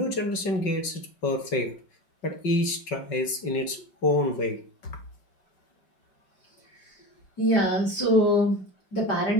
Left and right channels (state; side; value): late; right; 5.3 ms